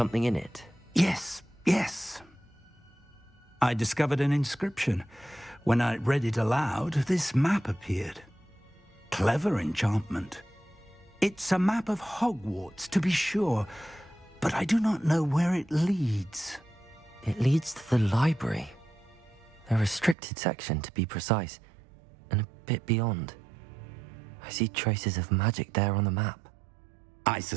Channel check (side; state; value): left; drops out; at 20.2 s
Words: in it. Yes. I discovered an inscription. When I read it aloud, this map appeared. Clever enchantment. It's a map of Hogwarts, to be sure, but I do not know where it leads. It leads to the library. A restricted section, to be precise, and a bit beyond. I see traces of magic there on the map. I